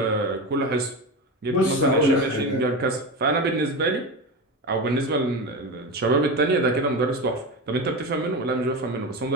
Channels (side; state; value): both; normal; correlation 0.22